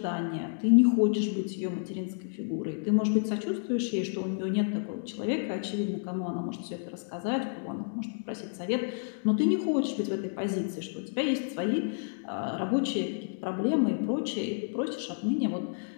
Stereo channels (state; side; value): silent; right; digital silence